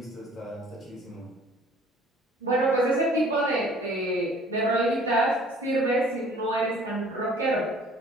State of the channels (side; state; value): both; normal; correlation 0.53